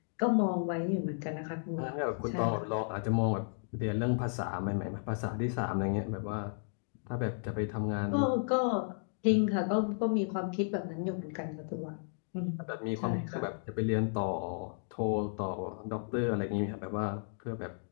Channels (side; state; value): right; silent; digital silence